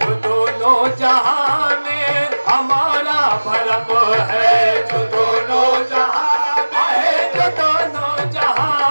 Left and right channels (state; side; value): inverted; both; correlation -1.00